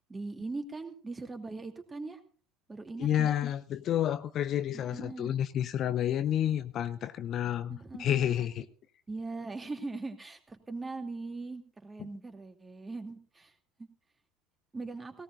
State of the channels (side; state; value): right; quieter; 7.3 dB